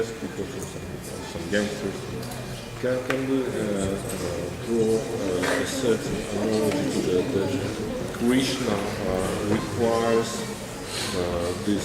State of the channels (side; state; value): both; identical; correlation 1.00